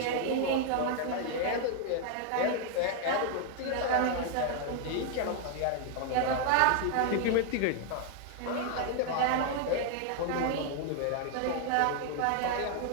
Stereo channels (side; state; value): both; different; correlation 0.00